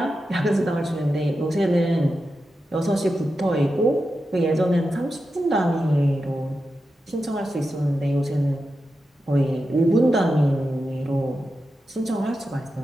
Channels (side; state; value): both; normal; correlation 0.90